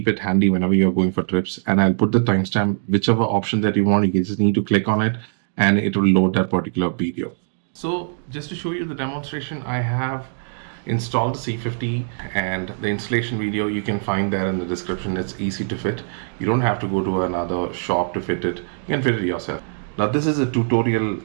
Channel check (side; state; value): left; silent; digital silence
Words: it handy whenever you're going for trips, and I'll put the timestamp. Whichever option that you want, you just need to click on it and it will load that particular video. So just to show you the demonstration, I have installed the C50, and the installation video you can find there in the description. It's easy to fit. You don't have to go to another shop to fit it. You can fit it yourself. Now this is a tutorial